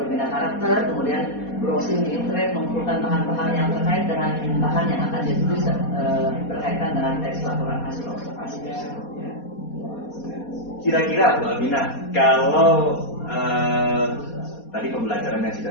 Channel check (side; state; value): right; late; 4.2 ms